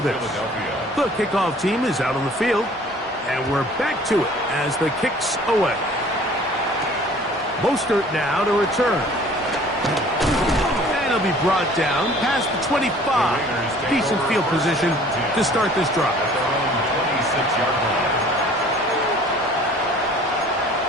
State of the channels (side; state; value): both; normal; correlation 0.51